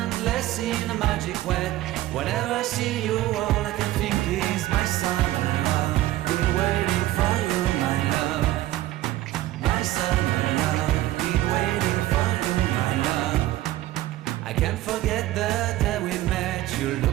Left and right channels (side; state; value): left; quieter; 15.6 dB